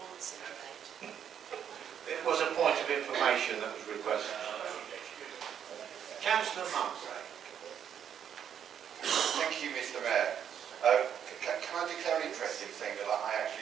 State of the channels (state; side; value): quieter; left; 8.8 dB